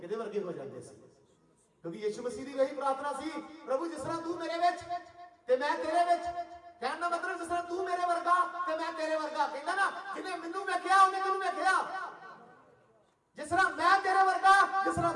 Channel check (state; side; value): identical; both; correlation 1.00